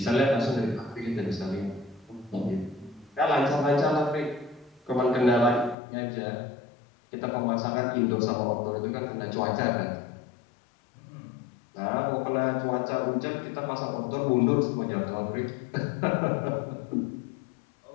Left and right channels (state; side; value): drops out; right; at 5.8 s